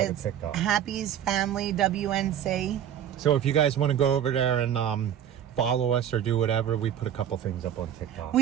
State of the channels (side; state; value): left; quieter; 9.8 dB